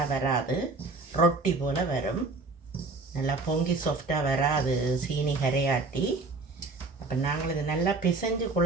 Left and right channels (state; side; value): quieter; left; 3.7 dB